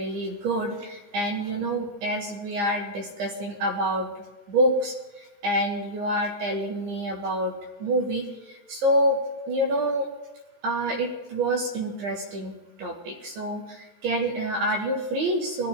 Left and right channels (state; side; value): late; left; 15 ms